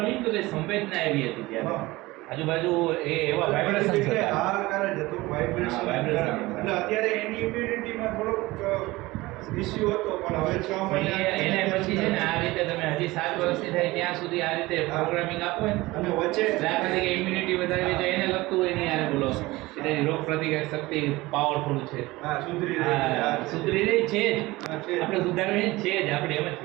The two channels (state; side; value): quieter; left; 20.2 dB